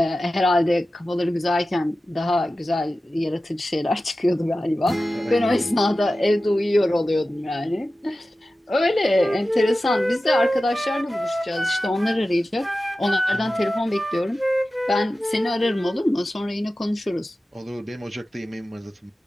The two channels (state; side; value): normal; both; correlation 0.95